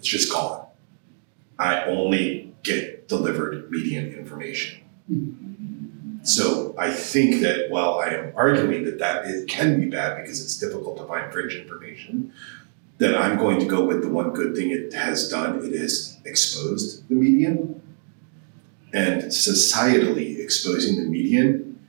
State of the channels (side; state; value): left; silent; 63 dB below the other